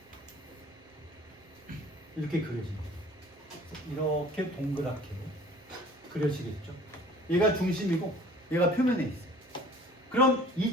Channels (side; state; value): both; normal; correlation 0.50